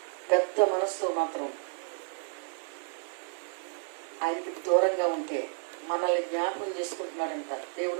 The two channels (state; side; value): silent; left; 57 dB below the other